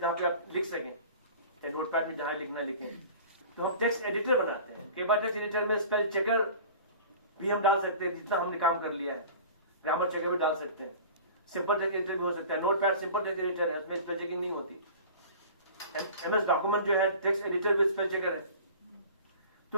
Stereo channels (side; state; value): both; inverted; correlation -0.41